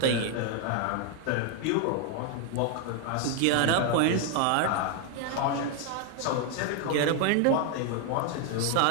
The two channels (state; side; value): different; both; correlation 0.01